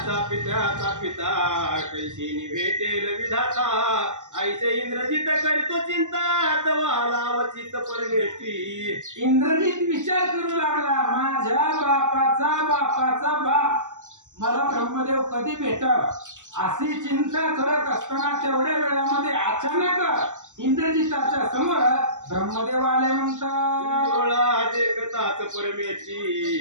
पिता कैसी भेटेल विधाता ऐसे इंद्रजित करतो चिंता तवा लावचित परमेष्ठी. इंद्रजित विचार करू लागला, माझ्या बापाचा बाप मला ब्रह्मदेव कधी भेटल अशी चिंता करत असताना तेवढ्या वेळामध्ये अचानक इंद्रजिताच्या समोर ब्रह्मदेव आले. म्हणतात, डोळा देखताच परमेष्ठी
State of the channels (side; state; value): left; late; 0.86 ms